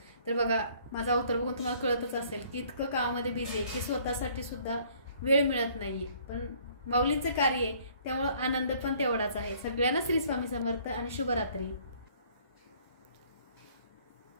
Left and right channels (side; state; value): both; inverted; correlation -0.59